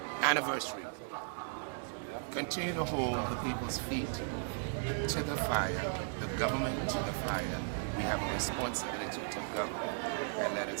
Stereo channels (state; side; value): silent; left; digital silence